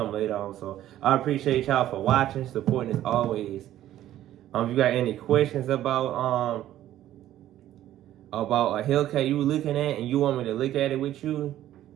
later on. So I appreciate y'all for watching, supporting as always. If you got any questions about a Hellcat you were looking at and you want me to look at it with you,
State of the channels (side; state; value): left; quieter; 12.9 dB